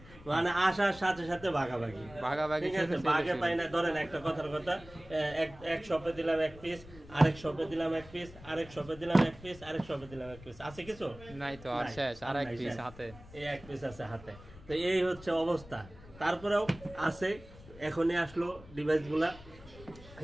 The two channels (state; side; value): noise; left; rumble, 19 dB below the sound